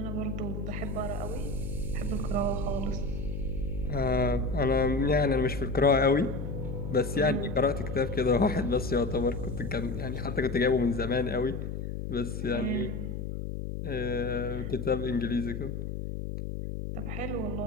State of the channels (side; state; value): left; noise; hum, 5 dB below the sound